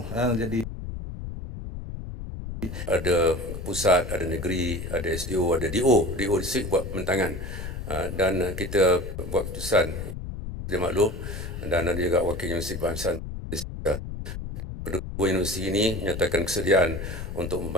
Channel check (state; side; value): noise; left; rumble, 7 dB below the sound